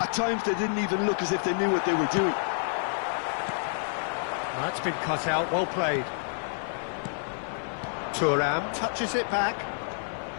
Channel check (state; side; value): silent; right; 56 dB below the other